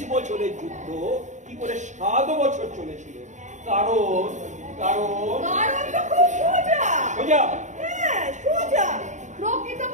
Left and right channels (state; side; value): late; left; 0.35 ms